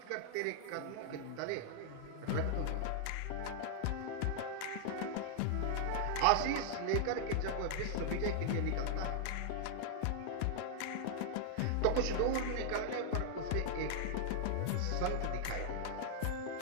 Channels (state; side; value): different; both; correlation -0.01